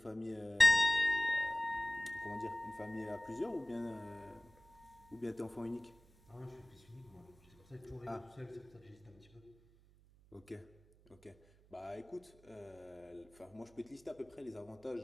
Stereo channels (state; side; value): noise; right; hum, 27 dB below the sound